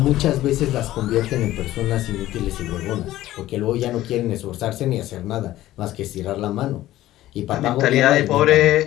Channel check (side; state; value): right; quieter; 14.9 dB